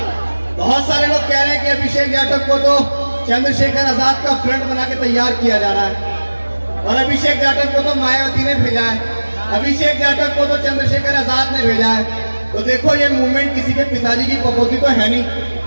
बहुत सारे लोग कह रहे हैं कि अभिषेक जाटव को तो चंद्रशेखर आजाद का फ्रंट बना के तैयार किया जा रहा है और अभिषेक जाटव को तो मायावती ने भेजा है, अभिषेक जाटव को तो चंद्रशेखर आजाद ने भेजा है। तो देखो, ये मूवमेंट किसी के पिताजी की पपोती तो है नहीं।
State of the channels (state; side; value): inverted; both; correlation -1.00